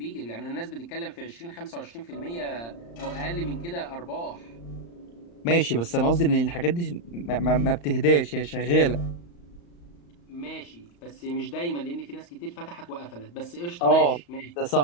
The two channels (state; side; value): late; right; 35 ms